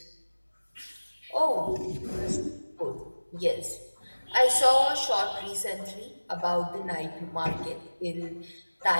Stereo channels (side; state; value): both; inverted; correlation -1.00